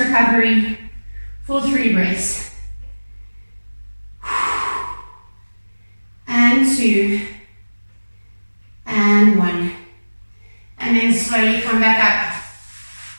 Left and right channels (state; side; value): inverted; both; correlation -1.00